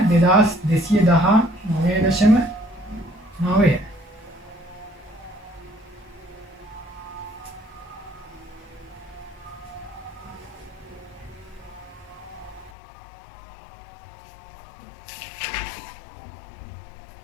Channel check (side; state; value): right; drops out; at 12.7 s